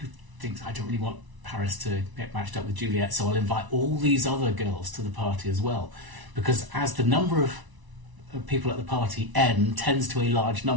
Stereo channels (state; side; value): late; left; 1.0 ms